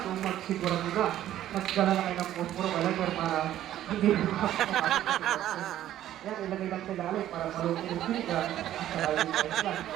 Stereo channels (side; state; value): left; quieter; 12.5 dB